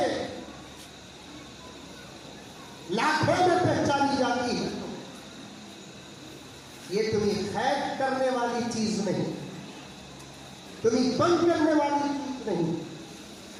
لاکھوں میں پہچانی جاتی ہے یہ تمہیں خیر کرنے والی چیز نہیں تمہیں بند کرنے والی چیز نہیں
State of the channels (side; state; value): both; identical; correlation 1.00